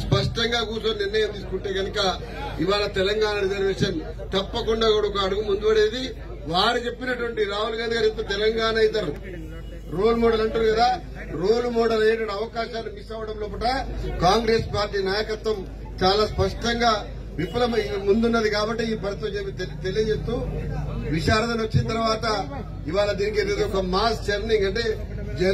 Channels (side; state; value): both; identical; correlation 1.00